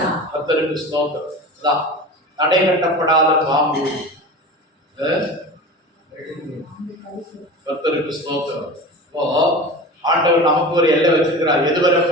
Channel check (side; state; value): both; normal; correlation 0.33